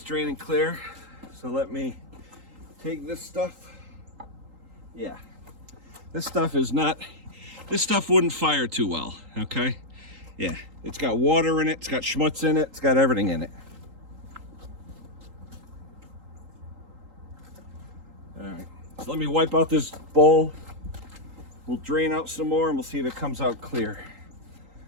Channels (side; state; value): left; late; 3.8 ms